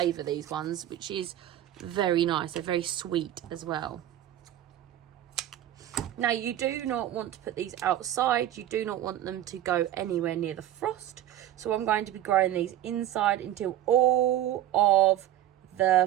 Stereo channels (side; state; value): left; quieter; 12.4 dB